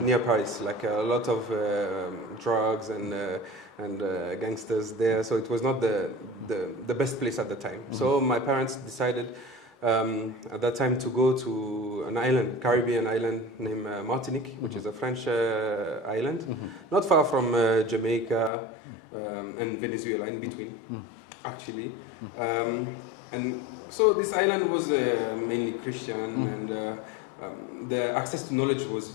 Paris, like a lot of drugs and gangsters there, so it was not the best place at the time. So my parents decided at that time to go to an island, Caribbean island named Martinique, which is a French island, not far from Jamaica and Venezuela, in between, actually. And so this island was mainly Christian, and the access to knowledge was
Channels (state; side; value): drops out; right; at 18.5 s